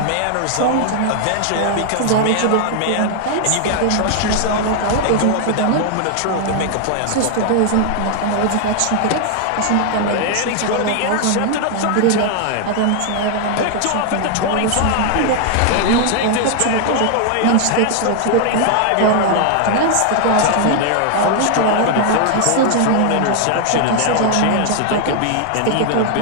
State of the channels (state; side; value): different; both; correlation 0.00